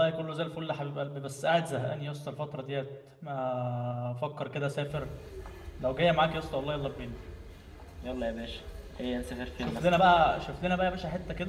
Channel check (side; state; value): both; identical; correlation 1.00